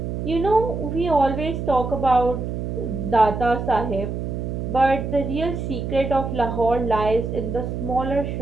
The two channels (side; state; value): right; noise; hum, 4 dB below the sound